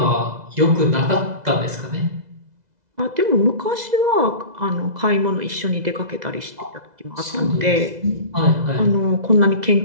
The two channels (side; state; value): left; late; 2.0 ms